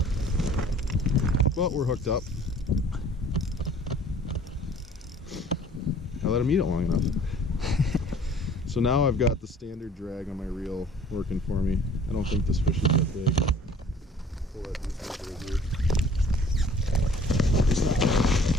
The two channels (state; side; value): normal; both; correlation 0.52